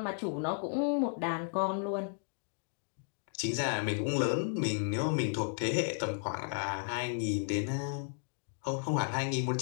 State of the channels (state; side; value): silent; right; digital silence